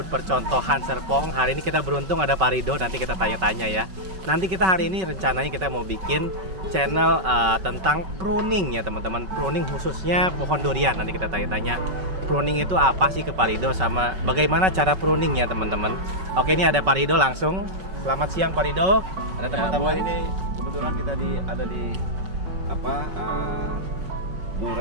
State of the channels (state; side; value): late; left; 5.3 ms